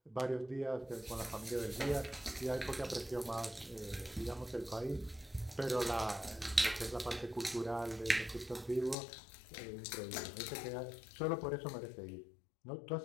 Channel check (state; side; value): drops out; right; at 9.0 s